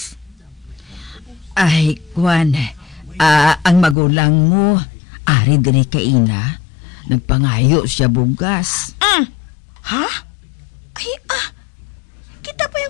Ay, Kwan, ang magulang mo, ari diri kay ina, nagpangayo siya bugas. Ha? Ay, kita pa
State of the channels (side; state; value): right; drops out; at 4.0 s